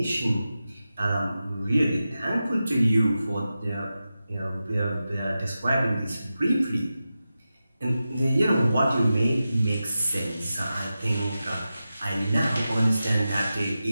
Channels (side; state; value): both; inverted; correlation -0.92